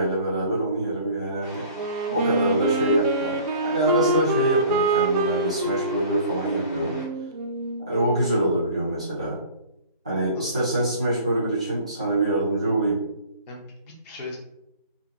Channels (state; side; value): inverted; both; correlation -0.48